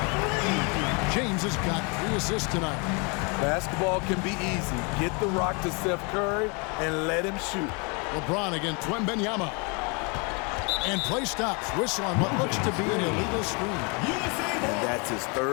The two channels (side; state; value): right; quieter; 32.5 dB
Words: James has got 3 assists tonight. Basketball can be easy. Get the rock to Steph Curry and let him shoot. LeBron against Wembanyama. And play stops. Whistle on what looks to be an illegal screen. And that's his